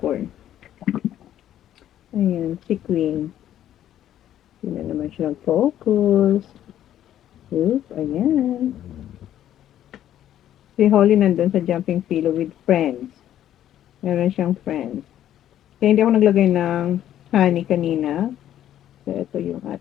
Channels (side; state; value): right; quieter; 11.5 dB